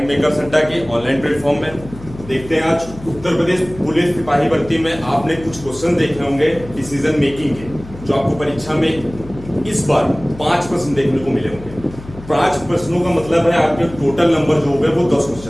मेकर्स अड्डा के ऑनलाइन प्लेटफॉर्म में। देखते हैं आज उत्तर प्रदेश पुलिस सिपाही भर्ती में आपने कुछ क्वेश्चन देखे होंगे डिसीजन मेकिंग के, जो आपको परीक्षा में इस बार 5 प्रश्न देखने को मिले होंगे। 5 प्रश्नों का मतलब है आपके टोटल नंबर जो हो गए वो 10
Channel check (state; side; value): noise; left; hum, 16 dB below the sound